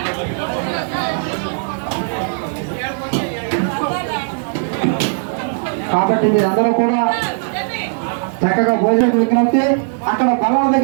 కాబట్టి మీరందరూ కూడా చక్కగా భోజనం విజ్ఞప్తి అక్కడ బలాల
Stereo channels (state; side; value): silent; left; 56 dB below the other